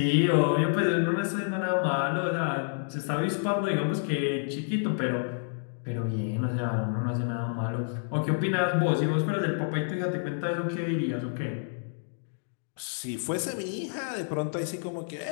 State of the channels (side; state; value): right; silent; digital silence